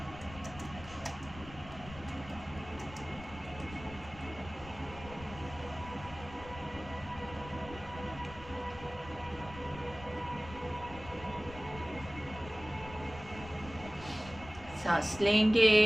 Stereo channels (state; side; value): noise; left; rumble, 15 dB below the sound